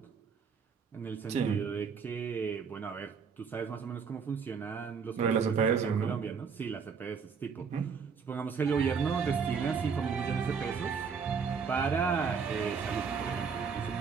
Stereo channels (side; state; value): left; quieter; 5.9 dB